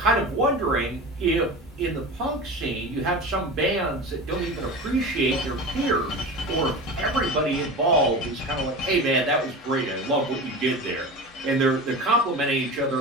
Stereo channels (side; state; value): both; normal; correlation 0.30